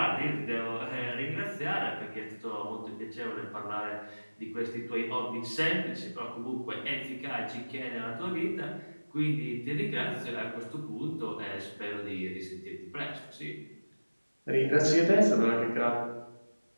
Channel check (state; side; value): inverted; both; correlation -1.00